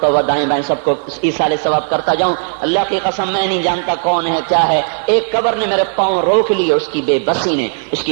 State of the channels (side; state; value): left; silent; digital silence